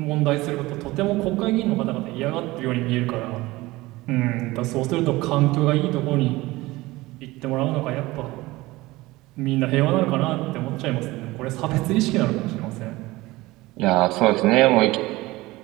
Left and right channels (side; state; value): left; quieter; 19.8 dB